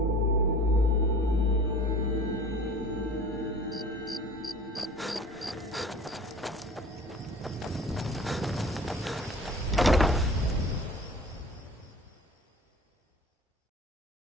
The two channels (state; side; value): normal; both; correlation 0.44